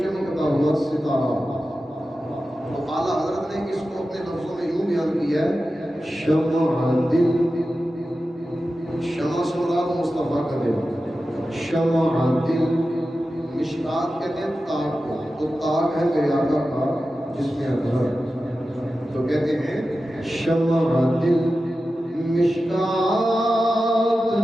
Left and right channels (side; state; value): both; normal; correlation 0.93